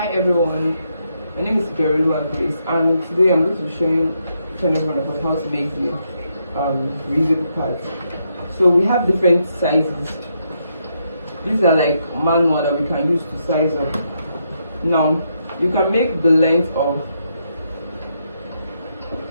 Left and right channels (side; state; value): both; inverted; correlation -0.79